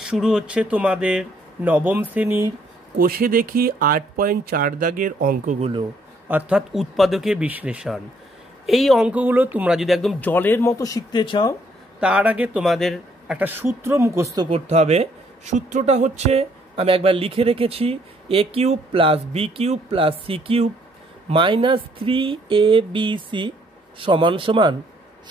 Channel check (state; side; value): normal; both; correlation 0.67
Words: শুরু হচ্ছে তোমাদের নবম শ্রেণীর কোষে দেখি 8.4 দাগের অঙ্কগুলো, অর্থাৎ উৎপাদকে বিশ্লেষণ। এই অঙ্কগুলো তোমরা যদি একদম জলের মতো শিখতে চাও, তার আগে তোমাদের একটা সূত্র মুখস্থ করতে হবে। সূত্রটা হচ্ছে, আমি একবার লিখে রেখেছি, a cube plus B cube plus C cube minus 3abc সমান সমান,